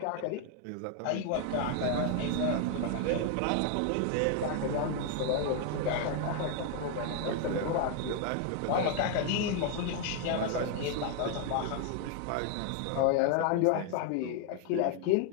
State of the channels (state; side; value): different; both; correlation 0.00